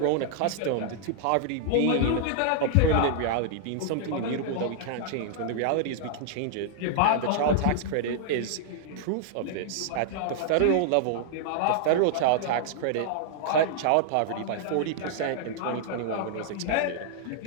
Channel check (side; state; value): both; different; correlation -0.01